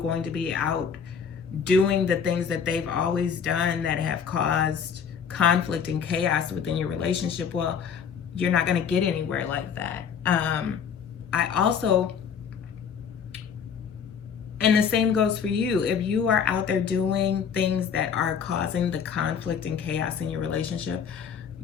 to be out doing the things that they've always done that have caused conflict and chaos within your relationship, well, you're not going to get anywhere like that. I also, and the same goes for you. If you are out there doing things that are causing the conflict and chaos in your relationship,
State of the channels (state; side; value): quieter; right; 7.1 dB